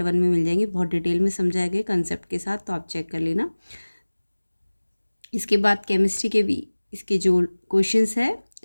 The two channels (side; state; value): both; inverted; correlation -1.00